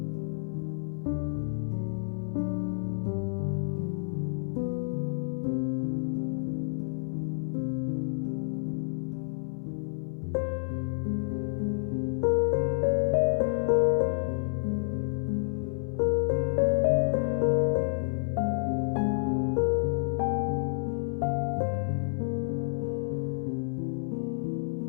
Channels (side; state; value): right; silent; 58 dB below the other